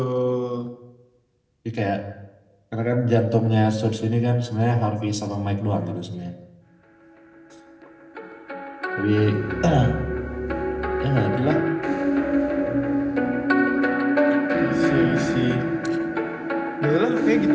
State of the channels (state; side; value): identical; both; correlation 1.00